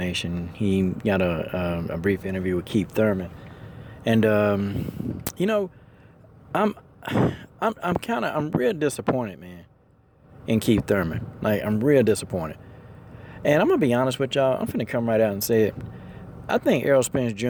He got a brief interview with Keith Thurman, and I'm real disappointed, man, in Keith Thurman. Like, I'm real disappointed, and I'm gonna be honest with y'all. I'm finna come right out and say it. I think Errol Spence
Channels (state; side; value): identical; both; correlation 1.00